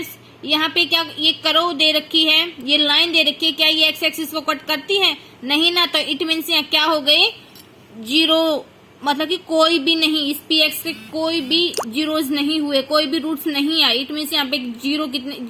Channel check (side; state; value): both; identical; correlation 1.00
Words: यहाँ पे क्या ये करो दे रखी है, ये लाइन दे रखी है, क्या ये एक्स एक्सिस को कट करती है, नहीं ना, तो इट मीन्स यहाँ क्या हो गए, जीरो, मतलब कि कोई भी नहीं, इस px से कोई भी जीरोज नहीं हुए, कोई भी रूट्स नहीं आए। इट मीन्स यहाँ पे जीरो, कितने